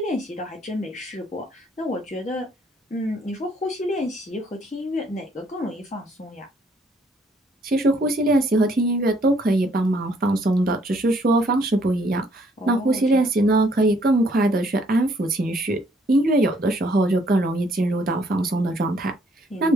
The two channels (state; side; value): normal; both; correlation 0.65